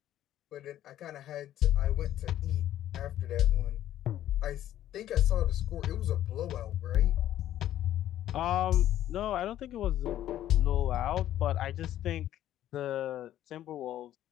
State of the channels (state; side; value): quieter; right; 12.4 dB